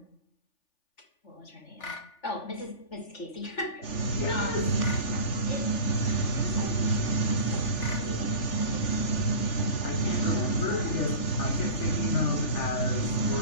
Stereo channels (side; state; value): right; late; 3.4 ms